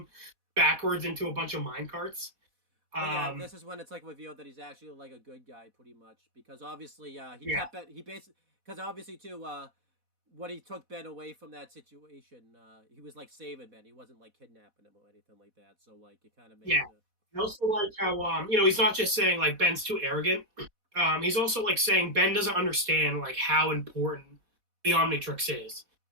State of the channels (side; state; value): left; late; 4.1 ms